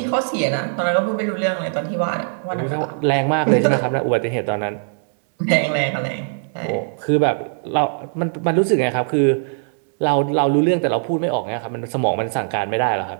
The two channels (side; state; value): left; silent; 63 dB below the other